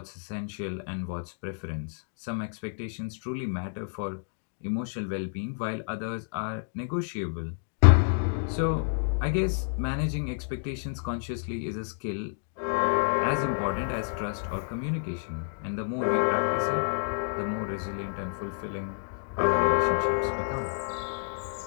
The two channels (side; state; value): right; silent; digital silence